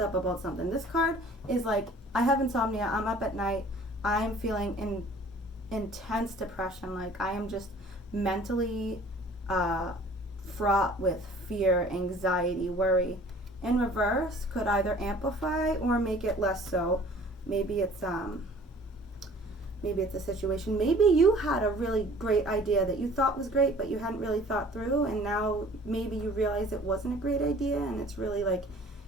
up about something. This card is like, I have insomnia, I'm up at night, I'm feeling intense depression, like I am just mentally fraught with fear, anxiety, worry. In reverse could either amplify or make it less so. Maybe it's a situation. Maybe you had a really great idea that you thought was great, but you hadn't really thought through, and now maybe you realize it wasn't a great idea, and it's really like,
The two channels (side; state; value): both; normal; correlation 0.50